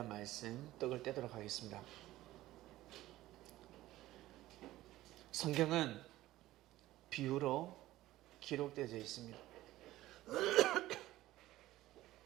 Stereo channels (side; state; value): left; quieter; 15.9 dB